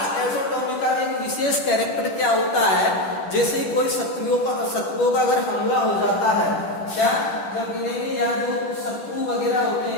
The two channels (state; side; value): late; right; 10 ms